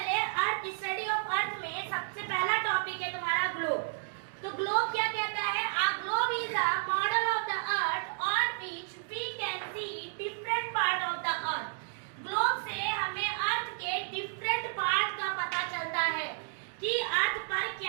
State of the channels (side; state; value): left; silent; digital silence